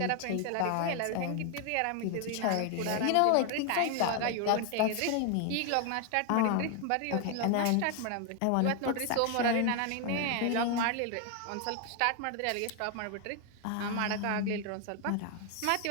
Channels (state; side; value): different; both; correlation 0.01